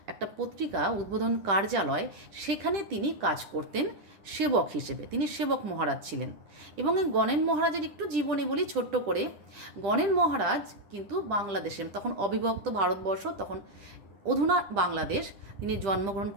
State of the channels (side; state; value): left; late; 10 ms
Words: একটা পত্রিকা, উদ্বোধন কার্যালয়, সেখানে তিনি কাজ করতেন সেবক হিসেবে। তিনি সেবক মহারাজ ছিলেন। এবং এই গণেন মহারাজের একটু জীবনী বলি ছোট্ট করে। গণেন মহারাজ কিন্তু বাংলাদেশে, তখন অবিভক্ত ভারতবর্ষ, তখন অধুনা বাংলাদেশ, তিনি জন্মগ্রহণ